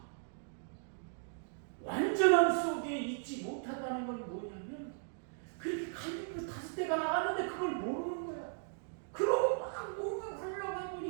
완전함 속에 있지 못하다는 건 뭐냐면 그렇게 갈비뼈 5대가 나갔는데 그걸 모르는 거야. 그러고 막 뭔가 하려고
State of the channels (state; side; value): silent; left; digital silence